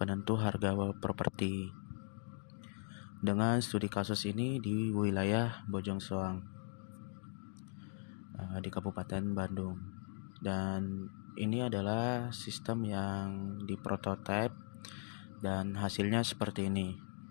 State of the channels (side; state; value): right; silent; 52 dB below the other